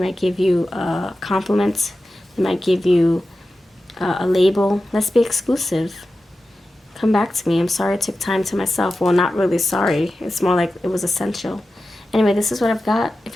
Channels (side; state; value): both; normal; correlation 0.93